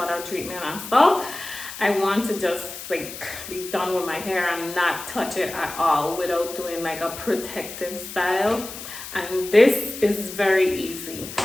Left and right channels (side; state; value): left; noise; hiss, 11 dB below the sound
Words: treatment and stuff. I want to just like be done with my hair and not touch it at all without doing like a protective style. And this is very easy.